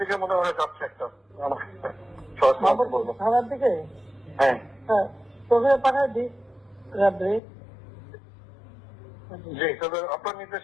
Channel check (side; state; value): right; drops out; at 7.4 s